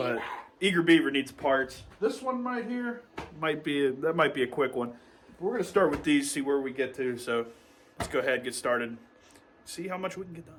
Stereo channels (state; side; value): identical; both; correlation 1.00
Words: Eager Beaver needs parts. This one right here might be a quick one. We're going to start with these, see where we get to. So let's go ahead and get started. See how much we can get